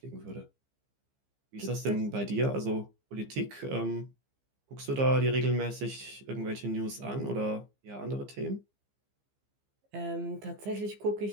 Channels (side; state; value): left; late; 15 ms